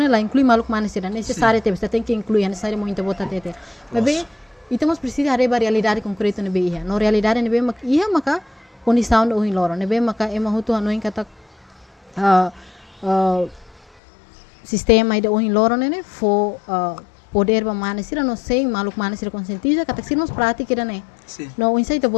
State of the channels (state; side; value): drops out; right; at 13.9 s